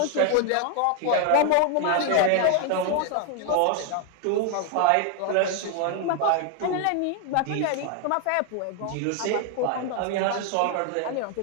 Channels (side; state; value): both; different; correlation 0.00